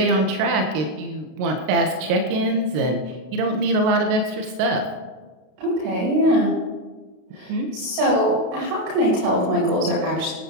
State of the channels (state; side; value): late; left; 32 ms